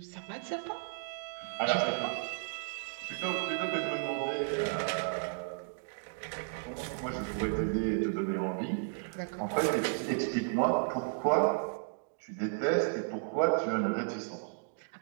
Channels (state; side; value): silent; left; digital silence